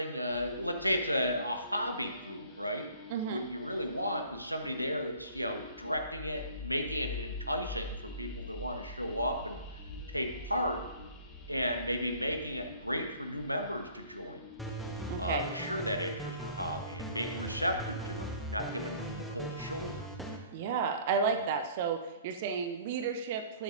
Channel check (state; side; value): inverted; both; correlation -0.52